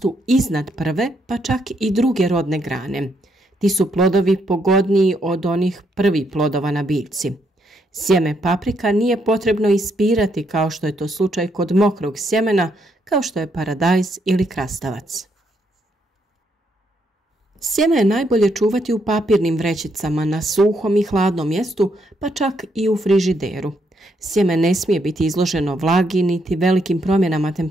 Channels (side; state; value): both; normal; correlation 0.76